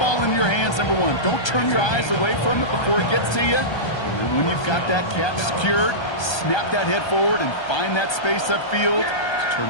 in your hands, number one. Don't turn your eyes away from it before it gets to you. And when you've got that catch secured, snap that head forward and find that space upfield to turn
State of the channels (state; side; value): late; right; 1.3 ms